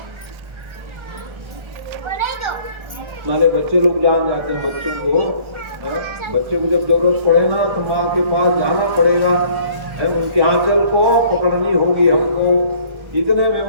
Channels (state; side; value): late; left; 1.3 ms